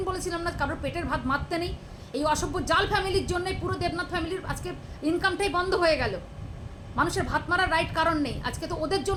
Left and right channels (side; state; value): both; identical; correlation 1.00